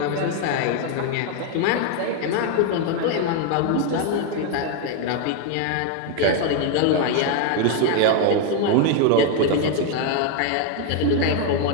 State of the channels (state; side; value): different; both; correlation 0.01